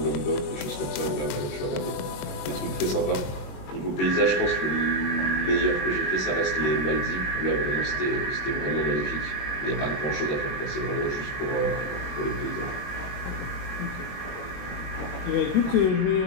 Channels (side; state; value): right; late; 21 ms